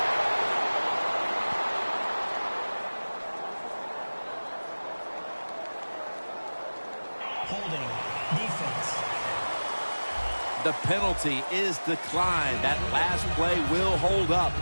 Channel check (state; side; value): inverted; both; correlation -1.00